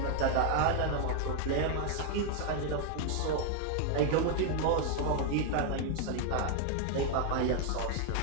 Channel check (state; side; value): different; both; correlation 0.00